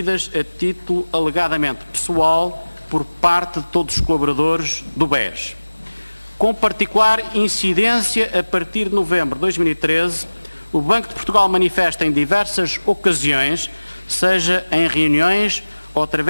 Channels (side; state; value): both; inverted; correlation -1.00